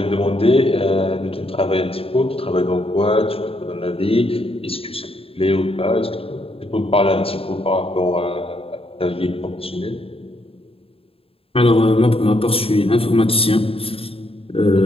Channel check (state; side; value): late; right; 0.27 ms